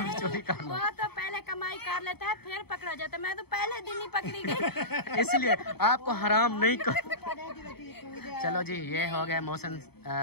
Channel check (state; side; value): late; right; 0.97 ms